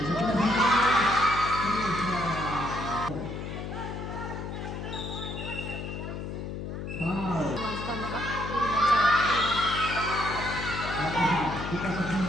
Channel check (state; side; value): noise; left; hum, 6 dB below the sound